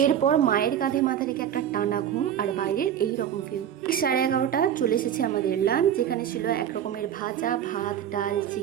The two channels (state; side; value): quieter; left; 9.7 dB